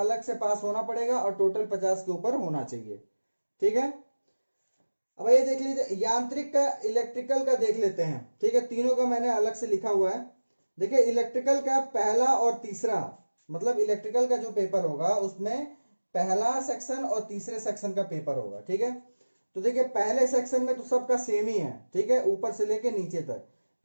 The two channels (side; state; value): both; inverted; correlation -1.00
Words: से पास होना पड़ेगा और टोटल 50 के ऊपर होना चाहिए। ठीक है, अब ये देख लीजिए यांत्रिक का, इलेक्ट्रिकल का देख लेते हैं। ठीक है, तीनों का मैंने अलग से लिखा हुआ है। देखिए इलेक्ट्रिकल का पहला और तीसरा, मतलब इलेक्ट्रिकल का जो पेपर होगा उसमें पहला सेक्शन और तीसरे सेक्शन का पेपर होगा। ठीक है, तो देखिए पहले सेक्शन में तो सबका सेम ही है। ठीक है, ऊपर से लेके नीचे तक।